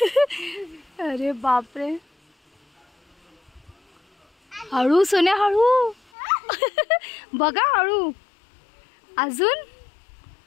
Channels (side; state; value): right; drops out; at 6.0 s